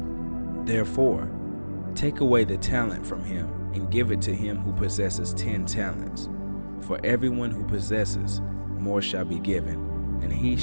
Therefore, take away the talent from him, and give it to him who possesses 10 talents. For everyone who possesses, more shall be given, and he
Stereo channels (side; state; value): both; inverted; correlation -1.00